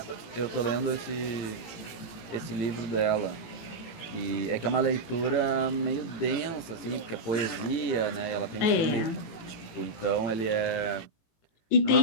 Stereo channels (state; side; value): late; right; 18 ms